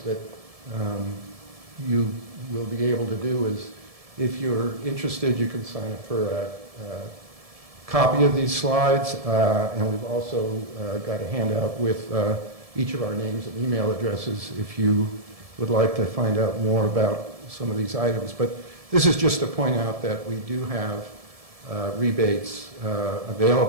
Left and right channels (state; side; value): late; left; 1.7 ms